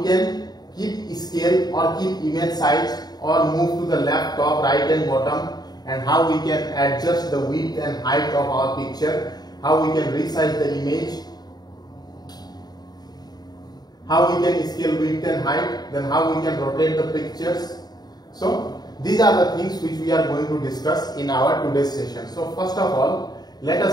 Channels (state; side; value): late; right; 0.19 ms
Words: can keep scale or keep image size or move to the left, top, right and bottom, and how we can adjust the width and height of our picture, how we can resize the image, how we can scale width and height, then how we can rotate the pictures. So these are the things which we are going to discuss in our today's session. So first of all, let